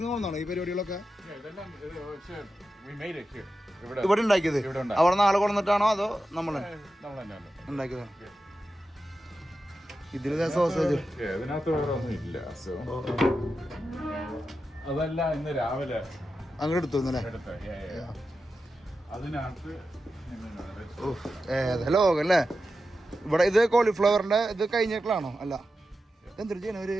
നിന്ന് വന്നാണോ ഈ പരിപാടികളൊക്കെ? ഇവിടെ ഉണ്ടാക്കിയത്? അവിടെ നാളെ കൊണ്ടിട്ടാണോ അതോ നമ്മൾ ഉണ്ടാക്കിയതാണോ? ഇതിലെ സോസേജ് ഇതിനകത്ത് വേറെ ഒന്നും ഇല്ല. അതല്ല, ഇന്ന് രാവിലെ അങ്ങോട്ട് എടുത്തു അതിനകത്ത് ലോകല്ലേ. ഇവിടെ ഇത് കോളിഫ്ലവറിന്റെ ഇത് കഴിഞ്ഞിട്ടാണോ? അല്ല, എന്തൊരു ചെയ്യണ ഒരു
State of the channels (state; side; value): normal; both; correlation 0.91